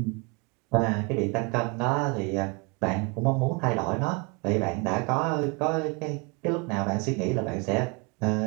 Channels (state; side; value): quieter; left; 31.4 dB